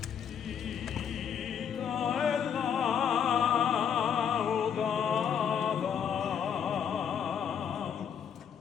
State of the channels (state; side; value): quieter; right; 7.9 dB